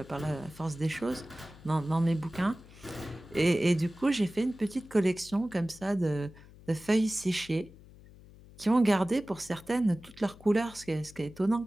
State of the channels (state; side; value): noise; left; hum, 21 dB below the sound